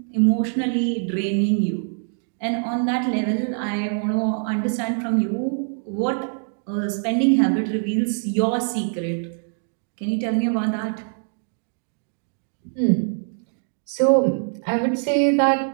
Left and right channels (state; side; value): silent; left; 63 dB below the other